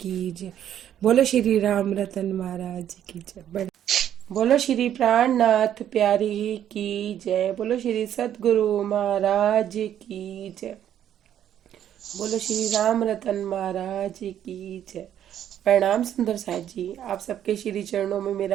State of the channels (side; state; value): left; quieter; 10.4 dB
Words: जय। बोलो श्री राम रतन महाराज की जय। बोलो श्री प्राणनाथ प्यारे की जय। बोलो श्री सदगुरु महाराज की जय। बोलो श्री राम रतन महाराज की जय। प्रणाम सुंदर साथ जी, आप सबके श्री चरणों में